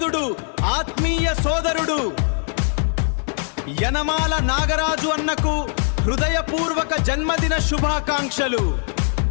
ఆత్మీయ సోదరుడు. యనమాల నాగరాజు అన్నకు హృదయపూర్వక జన్మదిన శుభాకాంక్షలు.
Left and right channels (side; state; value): right; silent; 65 dB below the other